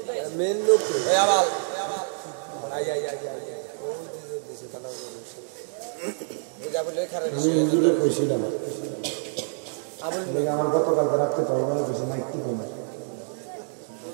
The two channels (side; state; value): left; silent; digital silence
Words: মেন লোক ওই আবাল আই আই আই ওই দিছে তালা ওই আবুল লে খারে আমি ইন্দুরে কইছিলাম আবুল লে আমার গতকাল রাতে পাইবা কিছু মাইক কি না।